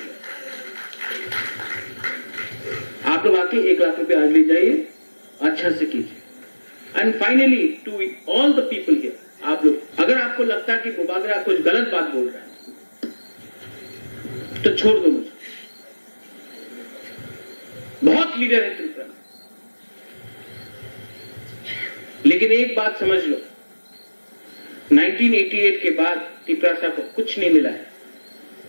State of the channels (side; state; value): both; inverted; correlation -1.00